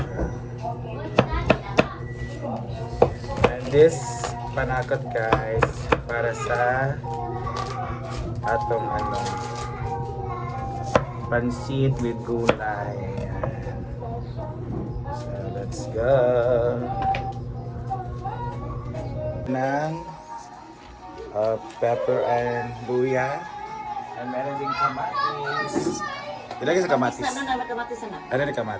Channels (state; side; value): identical; both; correlation 1.00